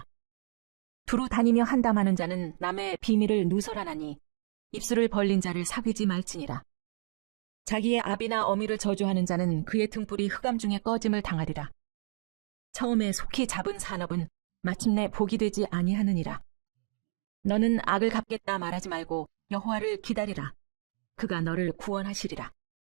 두루 다니며 한담하는 자는 남의 비밀을 누설하나니 입술을 벌린 자를 사귀지 말지니라. 자기의 아비나 어미를 저주하는 자는 그의 등불이 흑암 중에 꺼짐을 당하리라. 처음에 속히 잡은 산업은 마침내 복이 되지 아니하느니라. 너는 악을 갚겠다 말하지 말고 여호와를 기다리라. 그가 너를 구원하시리라.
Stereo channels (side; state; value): left; silent; digital silence